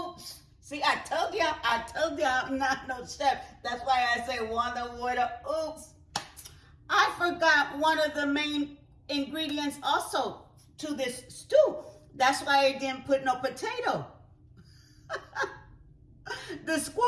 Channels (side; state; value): both; identical; correlation 1.00